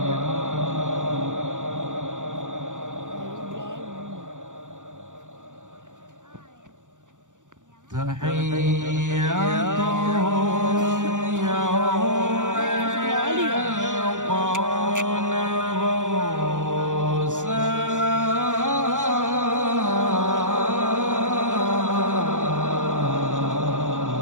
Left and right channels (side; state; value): left; late; 0.86 ms